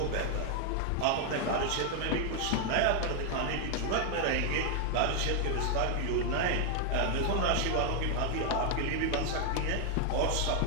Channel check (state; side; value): different; both; correlation 0.00